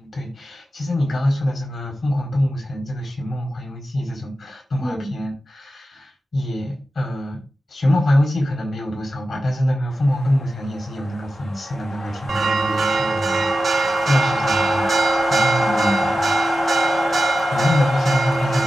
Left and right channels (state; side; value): normal; both; correlation 0.93